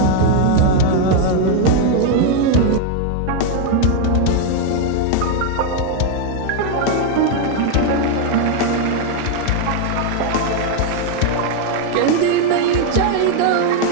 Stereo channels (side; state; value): both; different; correlation 0.01